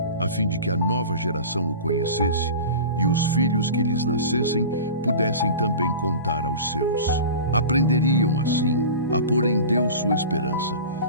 a fim de que a nova geração o conhecesse e os filhos que lhes nascessem pudessem também contar aos seus. Aprenderiam, assim, a pôr em Deus sua esperança,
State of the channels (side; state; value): both; inverted; correlation -0.35